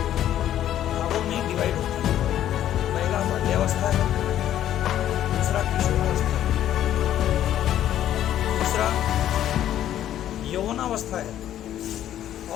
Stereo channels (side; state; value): right; quieter; 11.6 dB